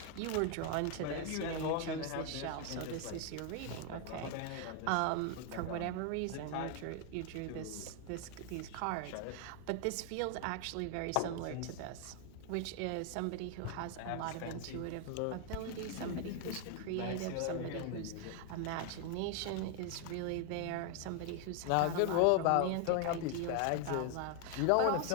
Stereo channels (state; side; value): different; both; correlation 0.00